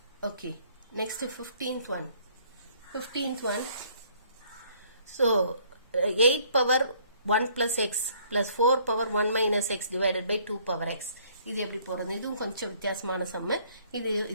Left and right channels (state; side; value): inverted; both; correlation -0.61